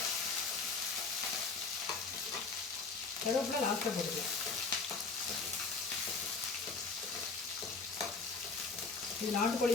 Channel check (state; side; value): quieter; right; 4.3 dB